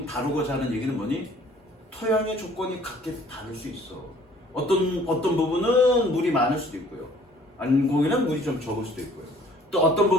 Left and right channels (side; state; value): both; normal; correlation 0.55